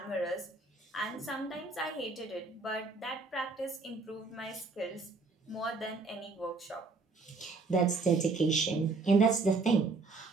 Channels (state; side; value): quieter; left; 3.9 dB